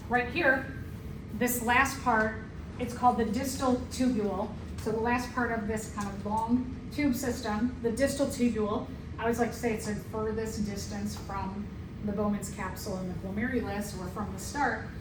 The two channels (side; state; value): both; identical; correlation 1.00